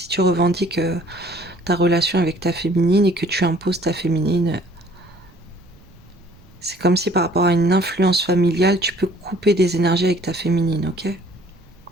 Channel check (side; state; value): right; noise; rumble, 27 dB below the sound